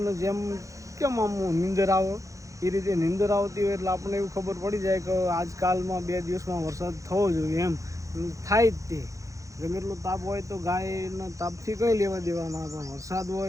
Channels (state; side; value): late; left; 0.15 ms